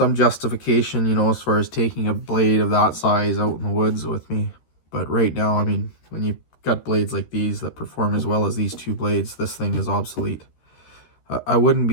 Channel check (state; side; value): late; right; 13 ms